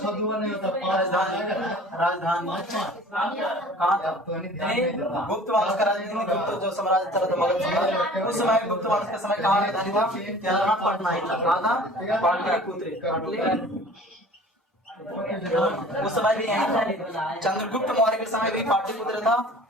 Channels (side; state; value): both; normal; correlation 0.46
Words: 2 नहीं होता 5 राजधानी कहाँ था? गुप्त वंश का राजधानी, गुप्त जो साम्राज्य था तो मगध साम्राज्य, उस समय गुप्त वंश के समय कहाँ राजधानी था? क्या पटना ही था। कहाँ था? पाटलिपुत्र। उस समय भी यही था। चंद्रगुप्त मौर्य के समय भी पाटलिपुत्र था,